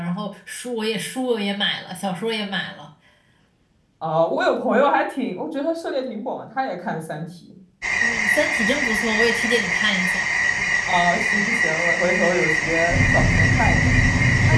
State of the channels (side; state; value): both; identical; correlation 1.00